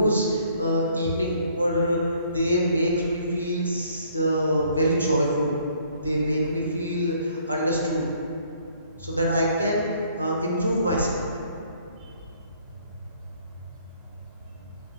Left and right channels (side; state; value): both; inverted; correlation -0.62